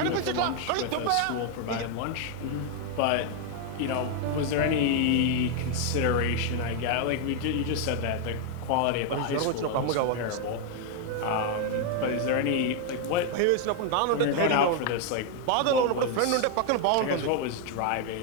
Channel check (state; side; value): different; both; correlation 0.00